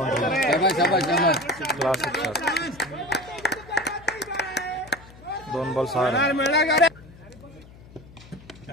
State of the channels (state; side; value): noise; left; hum, 21 dB below the sound